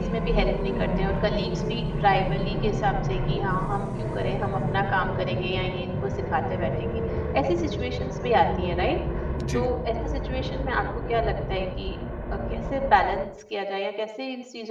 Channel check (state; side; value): identical; both; correlation 1.00